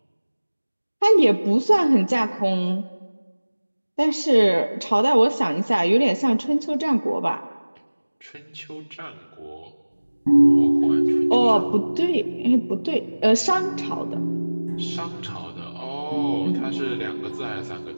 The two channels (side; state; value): both; inverted; correlation -1.00